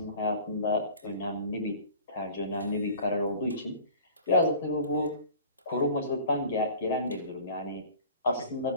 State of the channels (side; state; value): both; inverted; correlation -0.44